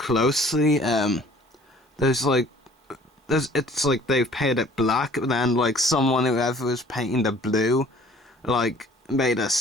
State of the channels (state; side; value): normal; both; correlation 0.53